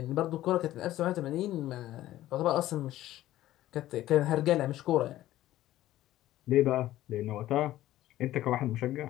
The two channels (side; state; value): right; quieter; 14.5 dB